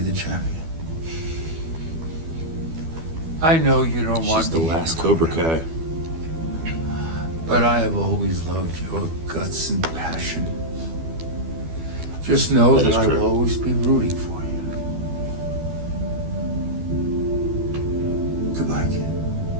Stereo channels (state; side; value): late; left; 12 ms